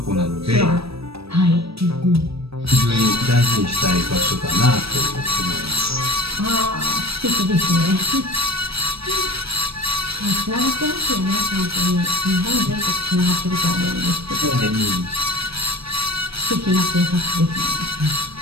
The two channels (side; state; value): left; late; 0.77 ms